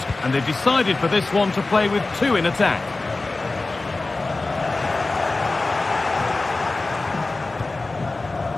And they've decided for this one to play with two in attack.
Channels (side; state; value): right; quieter; 3.3 dB